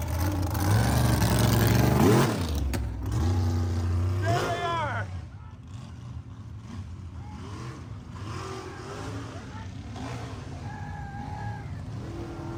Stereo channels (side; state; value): both; identical; correlation 1.00